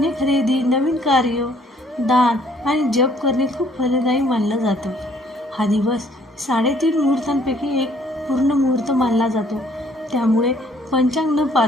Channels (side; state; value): both; normal; correlation 0.62